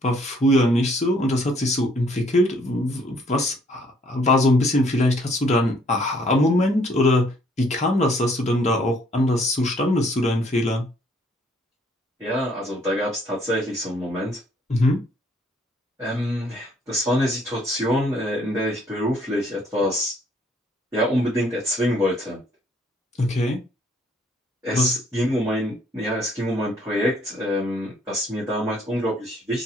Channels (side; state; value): both; normal; correlation 0.64